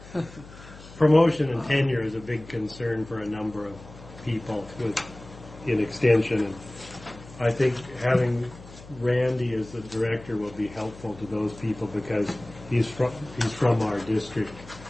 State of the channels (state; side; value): noise; left; hum, 18 dB below the sound